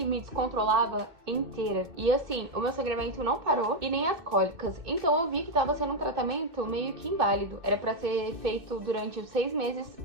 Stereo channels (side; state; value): left; late; 2.6 ms